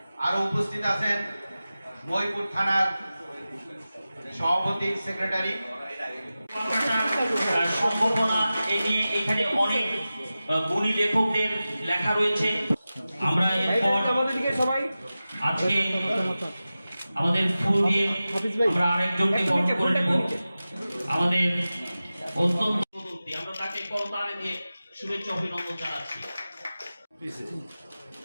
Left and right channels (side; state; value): both; inverted; correlation -0.95